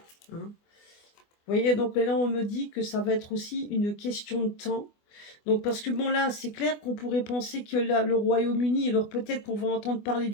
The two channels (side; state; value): right; late; 24 ms